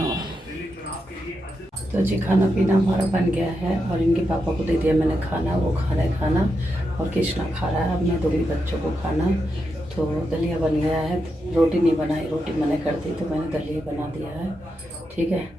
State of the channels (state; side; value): normal; both; correlation 0.85